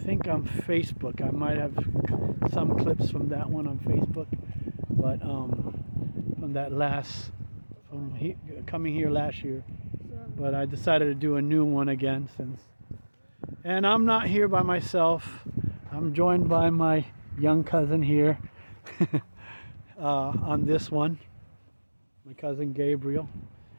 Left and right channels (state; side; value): inverted; both; correlation -1.00